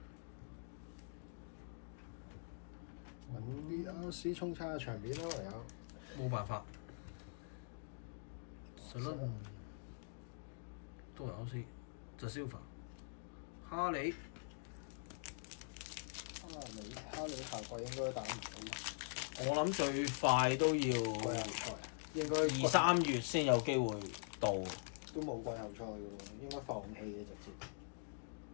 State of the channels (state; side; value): silent; right; digital silence